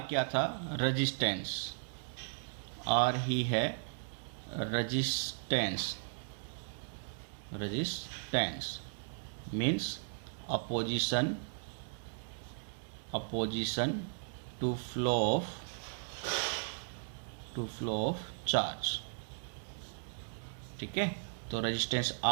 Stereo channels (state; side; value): silent; left; digital silence